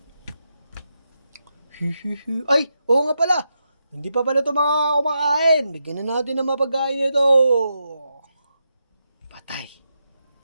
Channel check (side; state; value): both; inverted; correlation -0.85